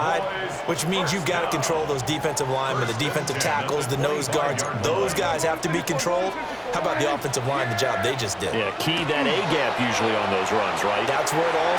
which means you've got to control those defensive linemen, the defensive tackles, the nose guards. Those guys have to be controlled. How about the offensive line, the job they just did? Yeah, key that A-gap usually on those runs, right? That's where it all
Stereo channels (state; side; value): identical; both; correlation 1.00